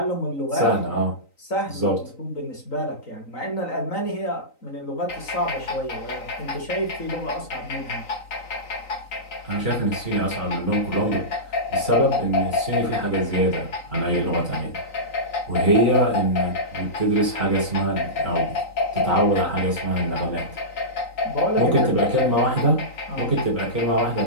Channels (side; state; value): right; late; 3.9 ms